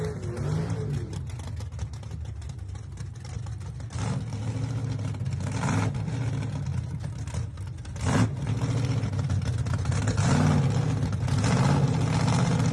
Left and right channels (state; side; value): identical; both; correlation 1.00